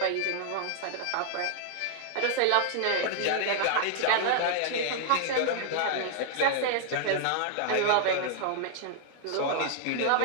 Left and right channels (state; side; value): different; both; correlation 0.00